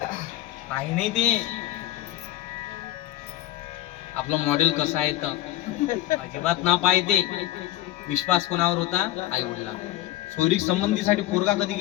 पाहि नाही ते आपलं मॉडेल कसं आहे तर अजिबात ना पाहिजे. विश्वास कोणावर होता? आई वडिला. सोयरीक संबंधीसाठी पोरगा कधी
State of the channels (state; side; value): quieter; right; 14.8 dB